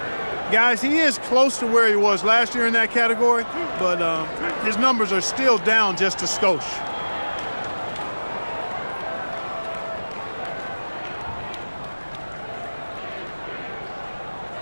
Guys, he is close to where he was last year in that category, but his numbers are still down just a skosh.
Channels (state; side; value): inverted; both; correlation -1.00